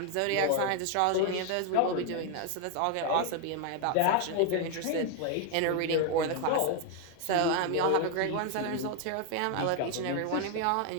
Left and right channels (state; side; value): different; both; correlation 0.01